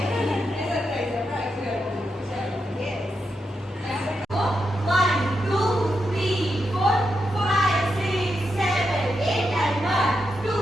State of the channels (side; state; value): both; normal; correlation 0.85